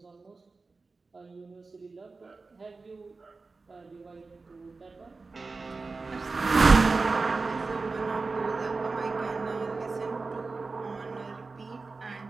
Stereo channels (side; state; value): left; quieter; 4.0 dB